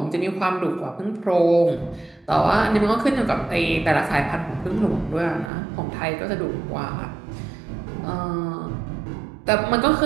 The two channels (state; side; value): drops out; left; at 5.5 s